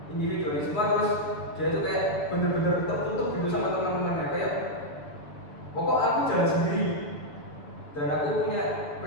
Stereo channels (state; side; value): late; right; 7.0 ms